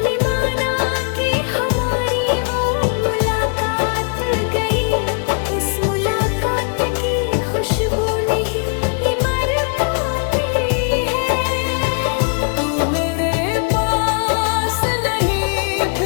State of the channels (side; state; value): right; quieter; 38.8 dB